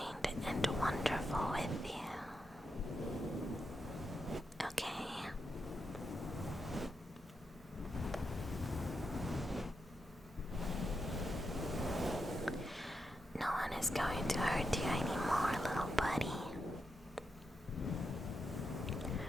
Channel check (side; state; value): both; normal; correlation 0.85